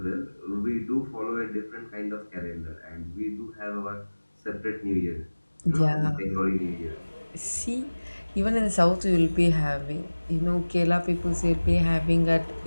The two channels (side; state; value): both; inverted; correlation -1.00